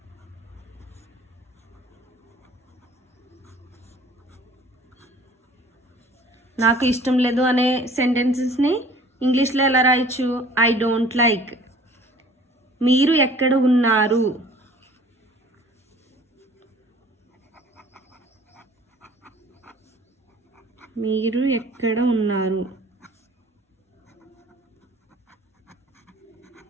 నాకు ఇష్టం లేదు అనే సెంటెన్సెస్ని ఇంగ్లీష్లో ఎలా రాయొచ్చు? I don't like. మీరు ఎక్కడ ఉన్నారు? మీరు ఎక్కడ ఉన్నారు?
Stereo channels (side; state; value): both; normal; correlation 0.50